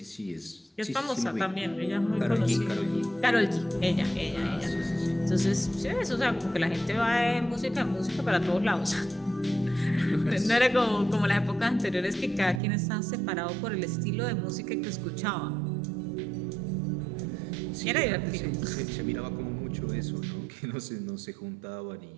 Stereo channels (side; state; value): left; drops out; at 12.6 s